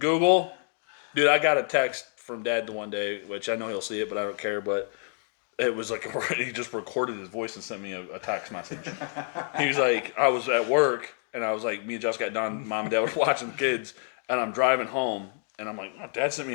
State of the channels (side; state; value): right; silent; 56 dB below the other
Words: dude, I got a text from Dad the one day, which I know he'll see it, but I don't care. But it was like he just recorded his voice and sent me a text message. He was like, I was at work and I was like, me and Josh got done, Mom and Dad were watching kids, and I'm driving home and I'm like, Dad sent